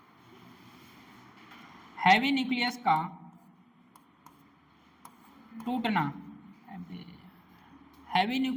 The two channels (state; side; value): identical; both; correlation 1.00